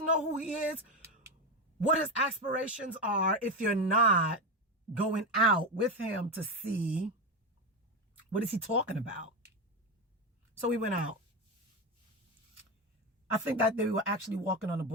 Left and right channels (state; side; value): normal; both; correlation 0.14